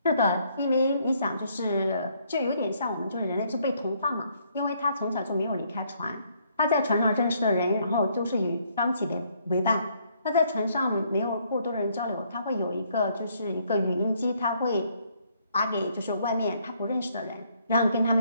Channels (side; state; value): both; inverted; correlation -0.69